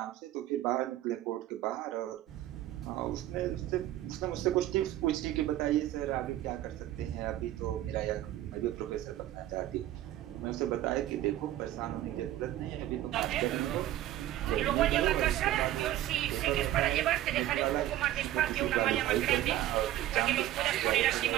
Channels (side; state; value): left; quieter; 13.7 dB